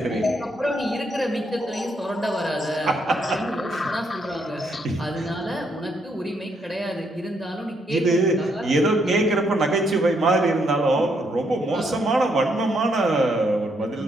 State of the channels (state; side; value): normal; both; correlation 0.74